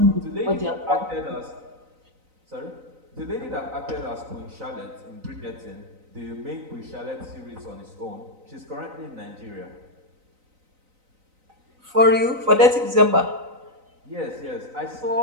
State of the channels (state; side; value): late; left; 3.9 ms